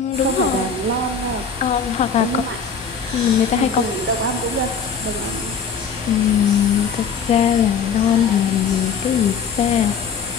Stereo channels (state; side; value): quieter; right; 5.9 dB